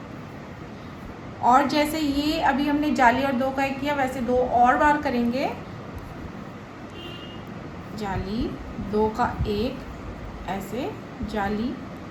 और जैसे ये अभी हमने जाली और 2 का 1 किया वैसे 2 और बार करेंगे। जाली, 2 का 1 ऐसे, जाली,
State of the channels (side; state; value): both; identical; correlation 1.00